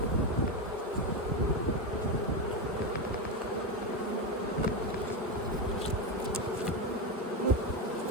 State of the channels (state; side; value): normal; both; correlation 0.12